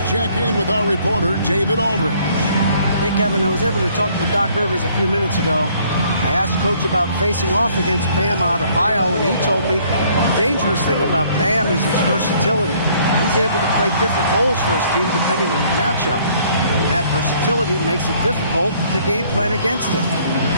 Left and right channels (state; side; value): inverted; both; correlation -0.61